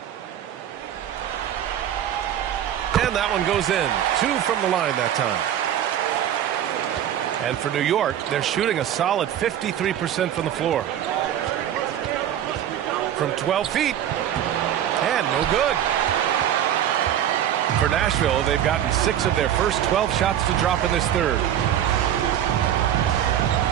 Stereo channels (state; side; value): quieter; left; 10.6 dB